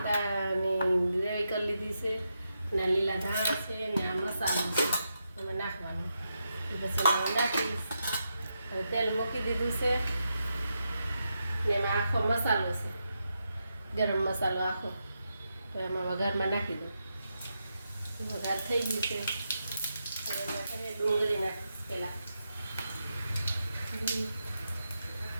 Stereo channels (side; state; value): both; inverted; correlation -0.85